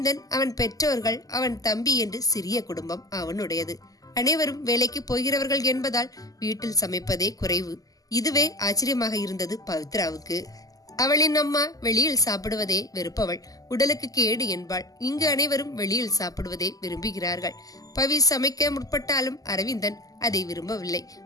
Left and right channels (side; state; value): right; late; 0.17 ms